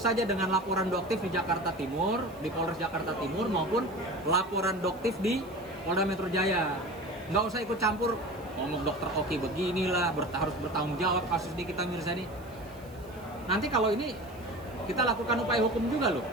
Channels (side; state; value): right; noise; hiss, 26 dB below the sound